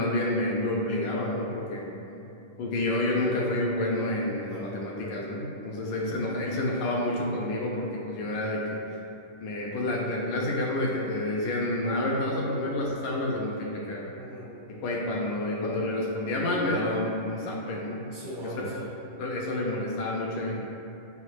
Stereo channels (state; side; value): late; right; 10 ms